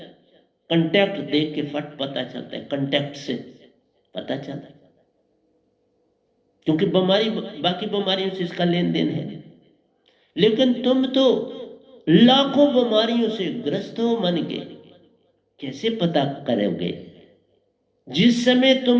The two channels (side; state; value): both; identical; correlation 1.00